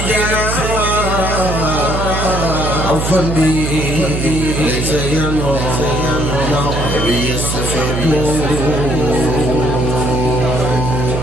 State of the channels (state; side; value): noise; right; hum, 2 dB below the sound